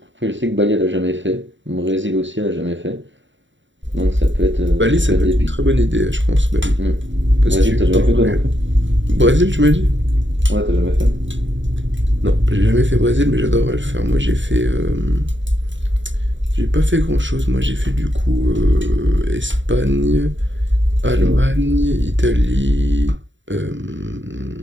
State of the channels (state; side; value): late; left; 0.54 ms